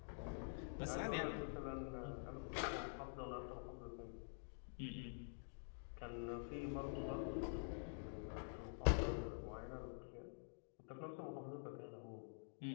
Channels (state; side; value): silent; right; digital silence